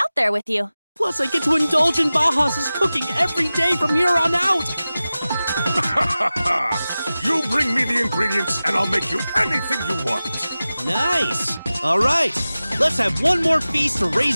there with you. Plus, I get to indulge in Bahas' cooking every day from here on out! You bring me the ingredients, and I'll make you anything you want. Nice! Alright, let's have one more feast to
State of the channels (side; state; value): both; inverted; correlation -0.96